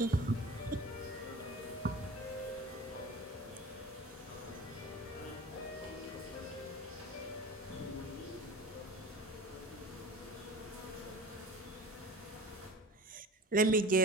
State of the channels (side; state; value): both; normal; correlation 0.37